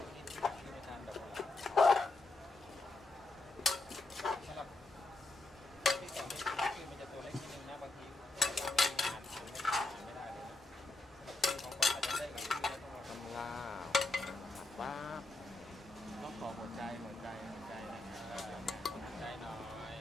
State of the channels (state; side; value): quieter; right; 3.0 dB